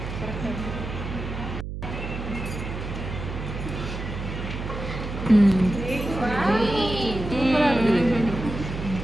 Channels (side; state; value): right; noise; hum, 7 dB below the sound